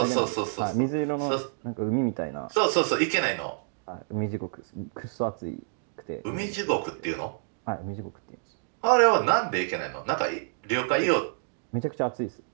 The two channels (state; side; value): silent; left; digital silence